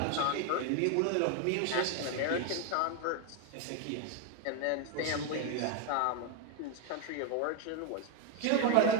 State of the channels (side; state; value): both; different; correlation 0.01